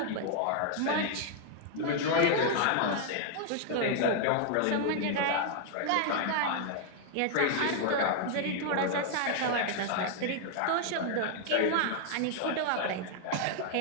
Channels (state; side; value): different; both; correlation -0.01